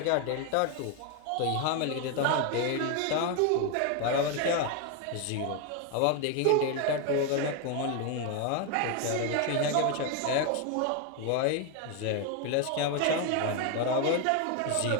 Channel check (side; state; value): both; different; correlation 0.01